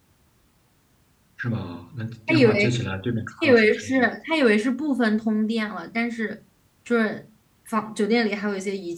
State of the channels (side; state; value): both; identical; correlation 1.00